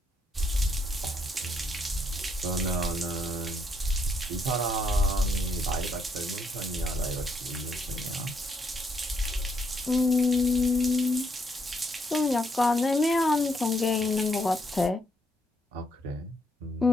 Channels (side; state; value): both; normal; correlation 0.74